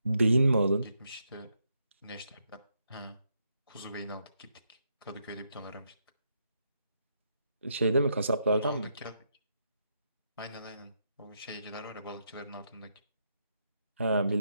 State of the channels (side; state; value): both; inverted; correlation -0.80